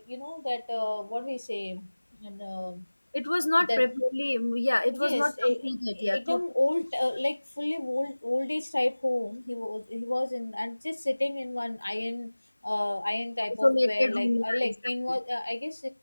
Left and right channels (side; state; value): both; inverted; correlation -1.00